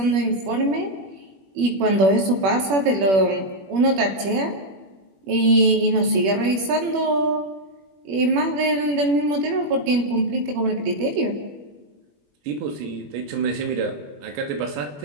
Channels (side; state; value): left; late; 21 ms